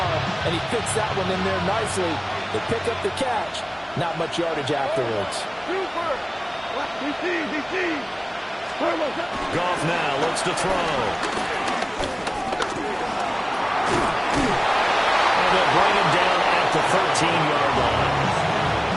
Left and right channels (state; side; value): identical; both; correlation 1.00